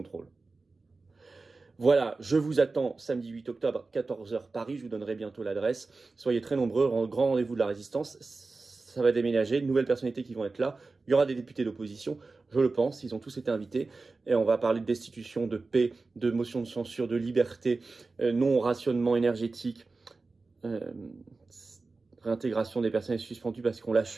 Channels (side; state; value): left; quieter; 3.8 dB